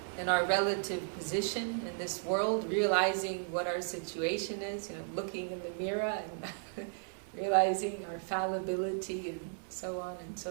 in our relative position in this world, realizing what our situation is, looking in the mirror and realizing our fallibility and so on and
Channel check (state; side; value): silent; left; 54 dB below the other